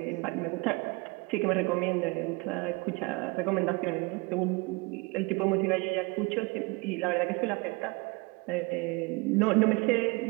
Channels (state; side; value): quieter; left; 26.7 dB